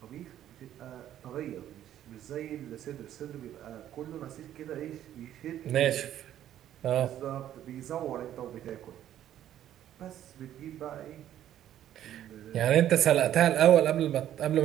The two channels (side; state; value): left; quieter; 11.6 dB